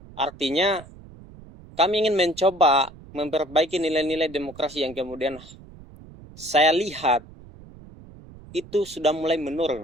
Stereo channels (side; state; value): right; noise; rumble, 20 dB below the sound